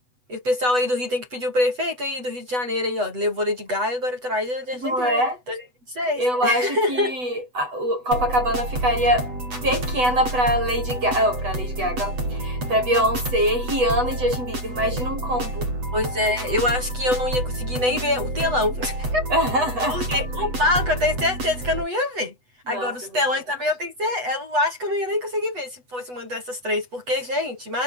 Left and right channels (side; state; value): left; late; 8.0 ms